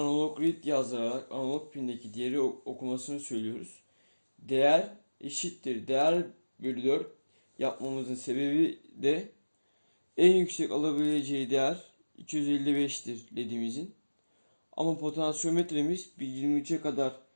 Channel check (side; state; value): both; inverted; correlation -1.00